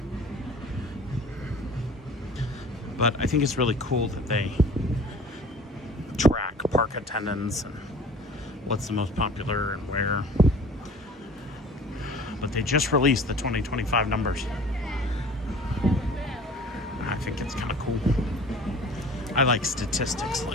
But I think it's really cool that they track park attendance and what's the most popular and where. But they just released the 2025 numbers. I think it's kind of cool. I like statistics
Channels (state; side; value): normal; both; correlation 0.45